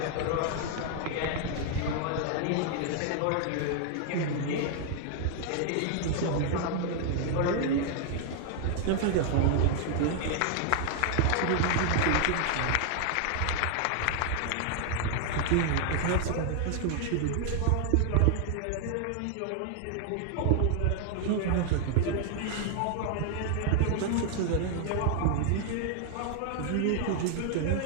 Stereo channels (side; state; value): both; different; correlation 0.00